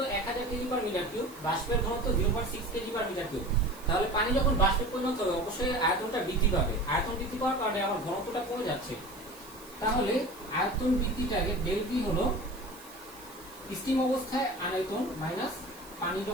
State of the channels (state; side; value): noise; right; hiss, 20 dB below the sound